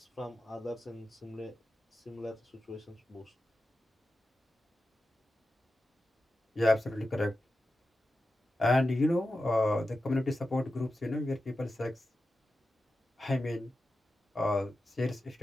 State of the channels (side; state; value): both; normal; correlation 0.92